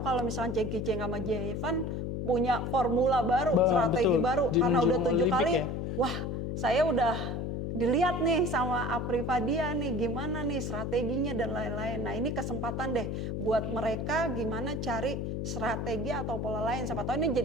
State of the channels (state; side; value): noise; left; hum, 3 dB below the sound